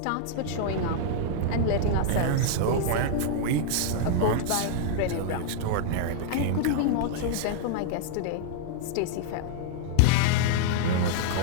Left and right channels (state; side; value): different; both; correlation -0.01